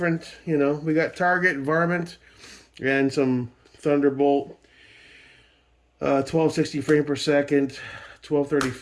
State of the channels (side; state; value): both; identical; correlation 1.00